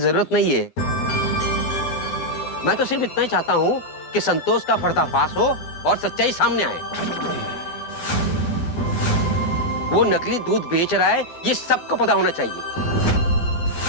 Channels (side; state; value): right; late; 12 ms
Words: नहीं है। मैं तो सिर्फ इतना ही चाहता हूँ कि संतोष का पर्दाफाश हो और सच्चाई सामने आए। वो नकली दूध बेच रहा है ये सबको पता होना चाहिए।